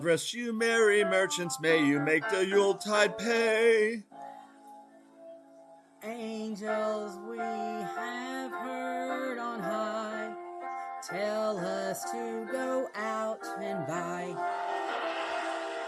rest you, merry merchants, may you make the Yuletide pay. Angels we have heard on high, tell us to go out and buy.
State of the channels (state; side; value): identical; both; correlation 1.00